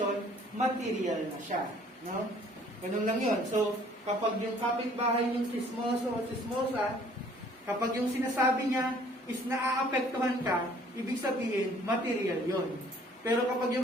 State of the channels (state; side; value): normal; both; correlation 0.57